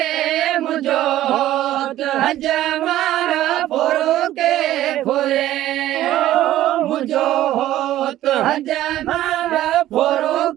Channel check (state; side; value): quieter; left; 13.9 dB